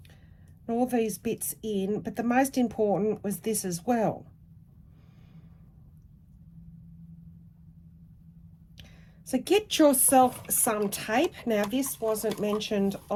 and all these bits in, but the most important was this as well. So get yourself some tape. Now this wasn't mentioned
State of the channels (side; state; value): both; identical; correlation 1.00